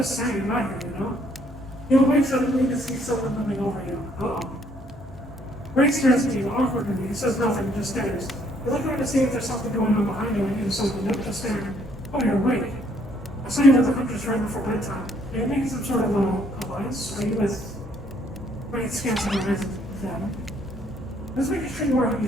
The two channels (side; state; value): both; normal; correlation 0.66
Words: saying, not here, you know? You'll wait suddenly to see someone moving over you. Uh-oh. Ray stares at you awkwardly. He says nothing, just stares. You look around to see if there's something going on behind you and you decide to note just staring. Oh, you're awake. I saw you with the hunters right before bedtime. Are you making some sort of alliance? Are you with... Ray scans her eyes at them. Just making sure you are who you